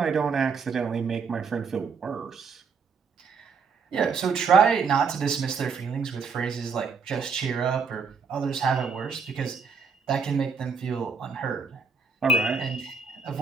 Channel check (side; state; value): left; quieter; 5.5 dB